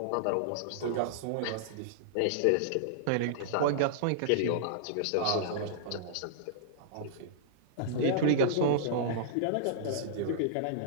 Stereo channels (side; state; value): both; different; correlation -0.02